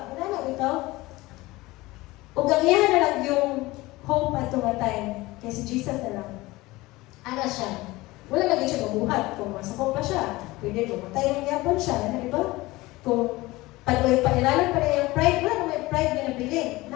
Ano na ito? Ug ang iyahan na lang yung hope at nga time, kaya si Jesus na lang. Ana siya. Wala lagi siya mabuhat. Kung masakop pa siya, pwede pumatay ng yapon siya. Ano, di ba? Kung pag-ilalan pa rin yung pride, wala na may pride na nabilin.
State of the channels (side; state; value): right; quieter; 20.1 dB